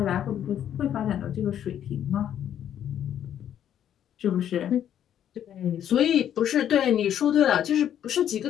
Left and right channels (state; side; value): quieter; right; 10.2 dB